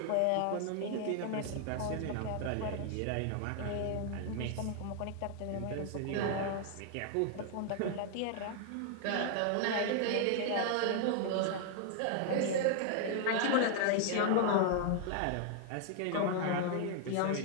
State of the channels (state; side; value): different; both; correlation 0.00